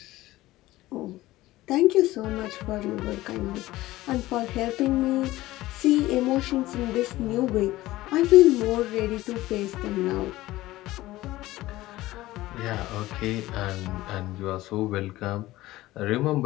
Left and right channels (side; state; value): right; quieter; 17.2 dB